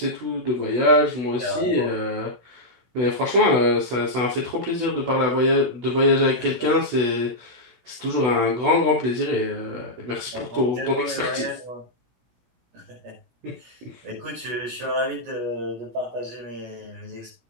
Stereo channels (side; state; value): left; late; 16 ms